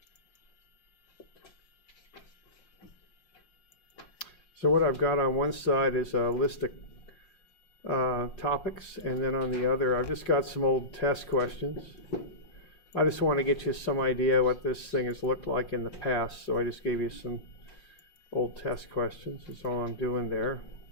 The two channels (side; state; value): right; late; 5.6 ms